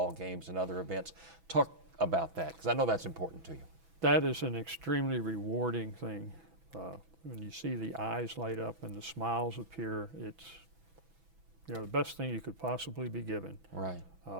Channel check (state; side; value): late; left; 6.1 ms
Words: games and other events. Talk about that, because I know that's important to you. That is an extremely rewarding thing. When you see the eyes light up and the smiles appear, it's the best thing you could possibly be given. Right.